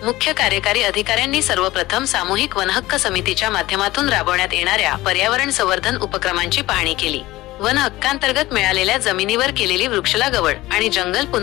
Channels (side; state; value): right; quieter; 18.0 dB